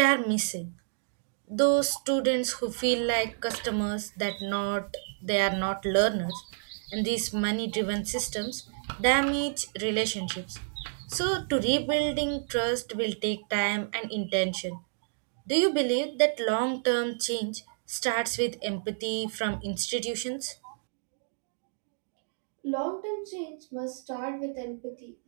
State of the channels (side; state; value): left; silent; digital silence